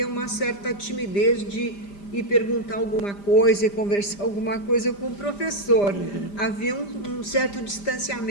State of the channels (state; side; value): late; right; 5.0 ms